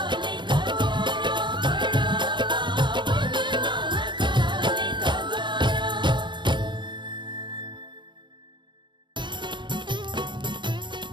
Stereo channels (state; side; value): late; left; 0.23 ms